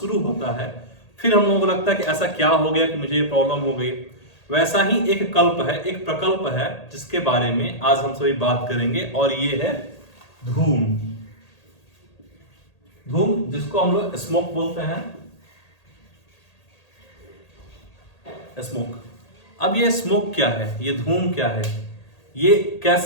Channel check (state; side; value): late; right; 1.8 ms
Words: होता है, फिर हम लोगों को लगता है कि ऐसा क्या हो गया कि मुझे ये प्रॉब्लम हो गई। वैसा ही एक कल्प है, एक प्रकल्प है, जिसके बारे में आज हम सभी बात करेंगे, और ये है धूम। धूम, जिसको हम लोग स्मोक बोलते हैं, स्मोक। अब ये स्मोक क्या है, ये धूम क्या है, ये